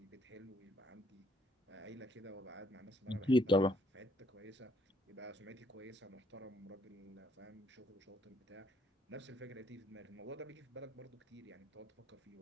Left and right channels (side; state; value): both; normal; correlation 0.67